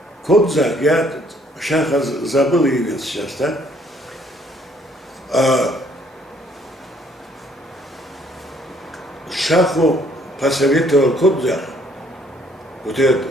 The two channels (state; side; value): normal; both; correlation 0.64